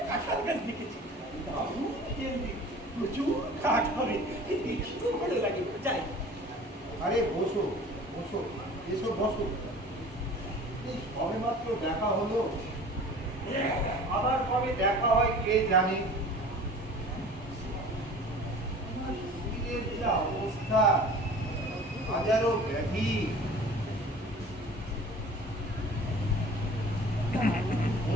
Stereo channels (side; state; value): both; normal; correlation 0.43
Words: কাঁঠাল গাছ দেখেছি, দারুণ হেলদি, প্রচুর কাঠ হবে, দেখিও ভালো লাগে। যাই আরে বসো বসো, এসো বসো। এই সবে মাত্র দেখা হলো, আবার কবে দেখা হয় কে জানে। আমার শরীরের যা অবস্থা, হাজারো ব্যাধি।